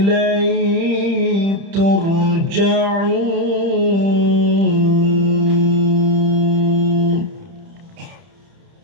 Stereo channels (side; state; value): left; late; 30 ms